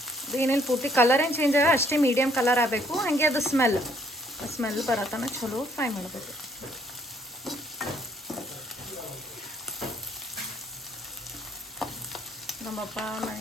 ಅದು ಏನೇನು ಪೂರ್ತಿ ಕಲರ್ ಏನು ಚೇಂಜ್ ಆಗ ಅಷ್ಟೇ ಮೀಡಿಯಮ್ ಕಲರ್ ಆಗಬೇಕು. ಹಾಗೆ ಅದು ಸ್ಮೆಲ್ ಬರತನ ಚಲೋ ಫ್ರೈ ಮಾಡಬೇಕು. ನಮ್ಮಪ್ಪ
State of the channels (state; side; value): normal; both; correlation 0.64